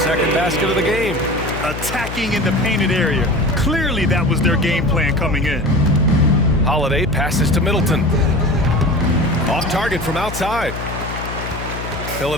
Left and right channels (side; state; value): left; noise; hum, 8 dB below the sound